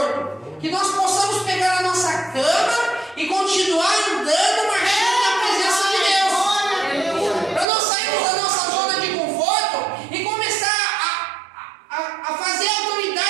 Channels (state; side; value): drops out; left; at 7.7 s